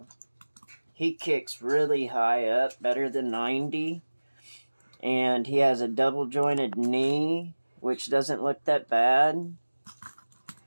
He kicks really high up, better than 90. And he has a double jointed knee, which doesn't look that bad.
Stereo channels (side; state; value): both; inverted; correlation -1.00